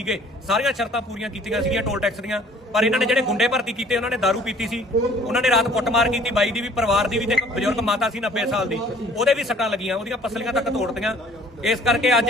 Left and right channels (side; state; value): both; normal; correlation 0.54